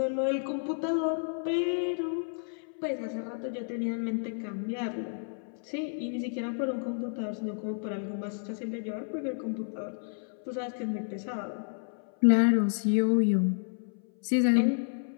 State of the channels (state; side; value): silent; right; 57 dB below the other